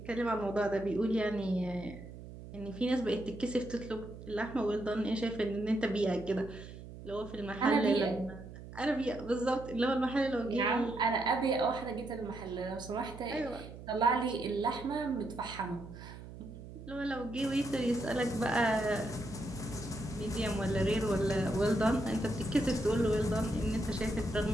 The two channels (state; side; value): noise; right; hum, 13 dB below the sound